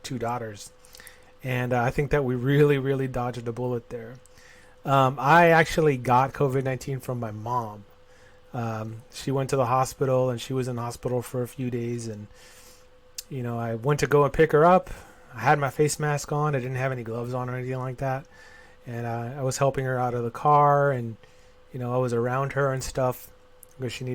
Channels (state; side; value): identical; both; correlation 1.00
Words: daughters. And I think that we really, really dodged a bullet there. I actually got COVID-19 from my mom. She went to the hospital, and she was in the hospital for a few days, and I went to go and pick her up. I had my face mask on. I didn't have any gloves on or anything like that. And I was helping her out of the car, and, I was around her and stuff because she